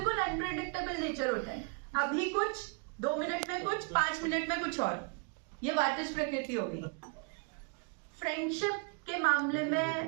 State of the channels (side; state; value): left; quieter; 35.3 dB